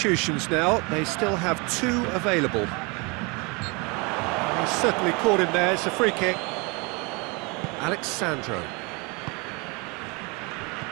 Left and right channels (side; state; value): left; quieter; 29.0 dB